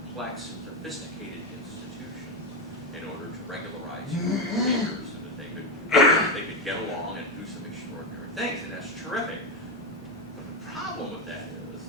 sophisticated institutions in order to regularize human behavior so that they could get along and do some extraordinary things, and that's terrific. But the problem with that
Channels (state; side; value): normal; both; correlation 0.11